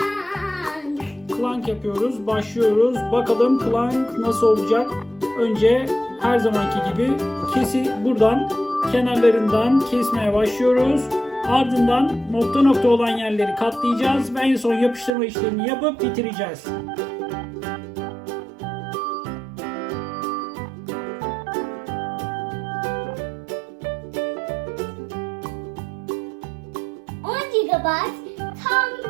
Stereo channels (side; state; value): left; drops out; at 15.1 s